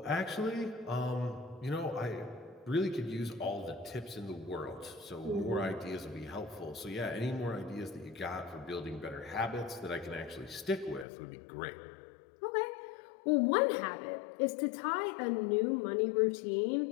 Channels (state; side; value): drops out; right; at 11.1 s